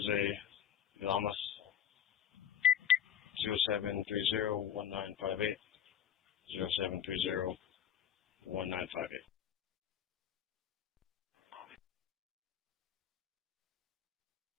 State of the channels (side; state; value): right; quieter; 9.3 dB